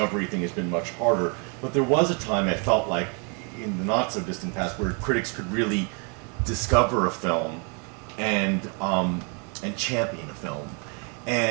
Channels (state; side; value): quieter; left; 36.0 dB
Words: thing has been much harder. But there was a time I felt like in the not so distant past where critics could really discover a film and champion a film.